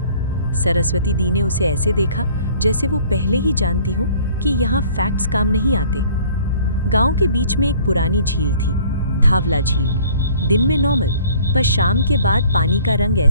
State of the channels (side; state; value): both; inverted; correlation -0.54